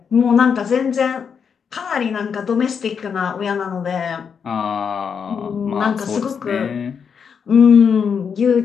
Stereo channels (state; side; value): quieter; right; 6.7 dB